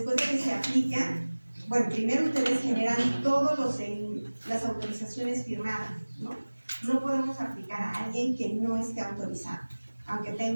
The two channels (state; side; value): inverted; both; correlation -1.00